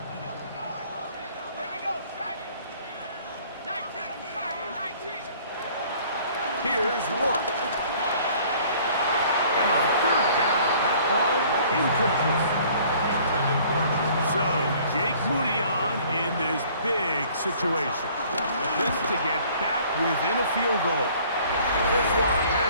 Here we go. 19. 19. Here's Rourke. And on 3rd down, that ball incomplete. So, Jake Moody on in this big situation. This to get back within a field goal. This one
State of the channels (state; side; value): inverted; both; correlation -0.55